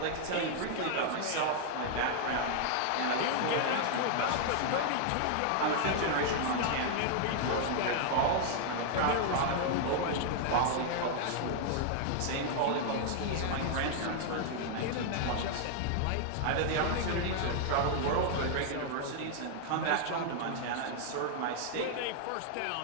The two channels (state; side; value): different; both; correlation 0.00